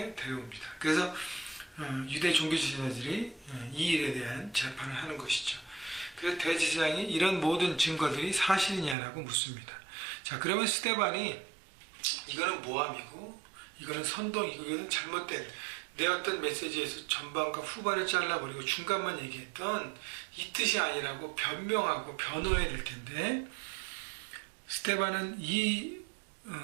데려옵니다. 그래서 유대 종교 지도자들이 이 일에 대한 재판을 하는 것이죠. 그래서 대제사장이 이런 모든 증거들이 사실이냐라고 묻습니다. 자, 그러면 스데반이 이거는 모함이고 이거는 선동이고 이거는 잘못된 내 어떤 메시지에서 전반과 후반을 잘라버리고 중간만 얘기했던 이 뜻이 아니라고 변명하고 변호해야 될 텐데, 스데반은 이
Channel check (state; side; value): drops out; left; at 9.0 s